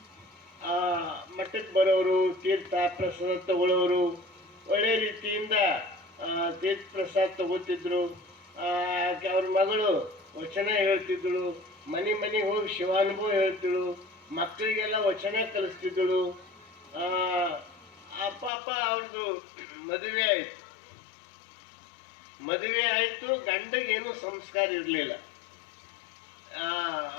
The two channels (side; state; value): right; drops out; at 18.5 s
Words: ಮಠಕ್ಕೆ ಬರೋರು, ತೀರ್ಥ ಪ್ರಸಾದ ತಗೊಳ್ಳೋರು, ಒಳ್ಳೆ ರೀತಿಯಿಂದ ತೀರ್ಥ ಪ್ರಸಾದ ತಗೋತಿದ್ರು. ಅವ್ರ ಮಗಳು ವಚನ ಹೇಳ್ತಿದ್ದಳು, ಮನೆಗೆ ಹೋಗಿ ಶಿವಾನುಭವ ಹೇಳ್ತಿಳು, ಮಕ್ಕಳಿಗೆಲ್ಲ ವಚನ ಕಲಿಸ್ತಿದ್ದಳು. ಅಪ್ಪ ಅವ್ರದ್ದು ಮದುವೆ ಆಯಿತು. ಗಂಡಗೇನು ಸಂಸ್ಕಾರ ಇರಲಿಲ್ಲ.